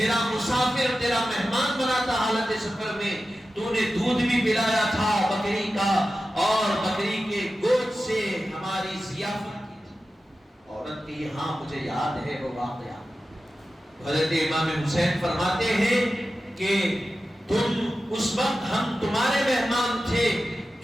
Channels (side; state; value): both; normal; correlation 0.93